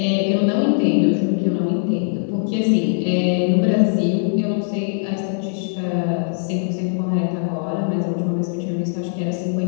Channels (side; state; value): right; silent; digital silence